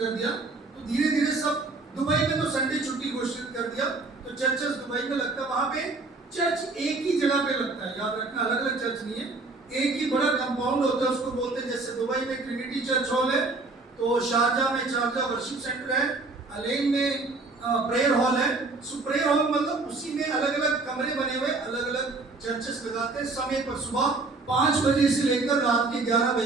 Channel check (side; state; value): left; quieter; 3.6 dB